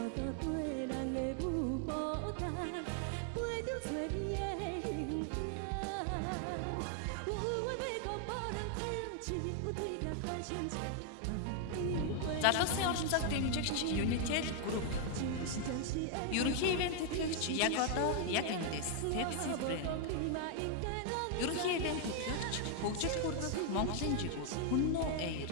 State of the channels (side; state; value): both; different; correlation 0.00